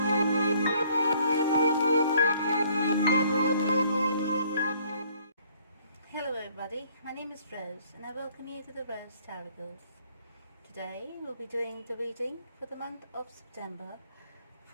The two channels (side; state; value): both; inverted; correlation -0.61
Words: everybody, my name is Rose and I welcome you to the Rose Tarocle. Today we'll be doing the reading for the month of September